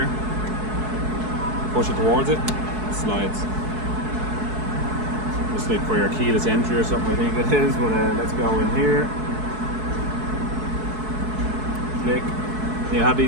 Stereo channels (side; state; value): left; late; 4.7 ms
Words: Push it towards it, it slides. Just like for your keyless entry or something, I think it is. But let's go in here. Click. You have